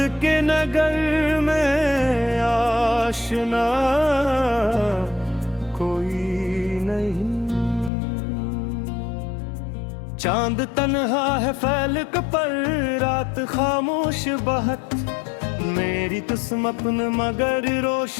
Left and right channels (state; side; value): drops out; right; at 7.9 s